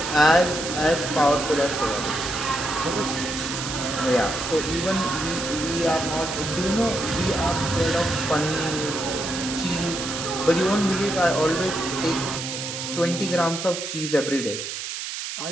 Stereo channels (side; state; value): right; noise; hiss, 6 dB below the sound